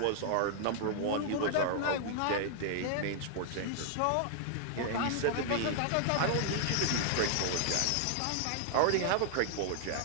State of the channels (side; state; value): both; different; correlation -0.01